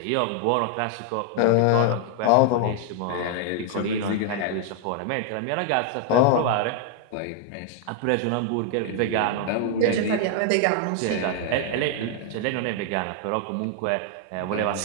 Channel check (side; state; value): both; different; correlation 0.00